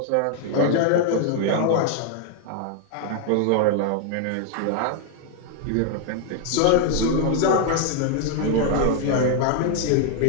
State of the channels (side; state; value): both; different; correlation 0.00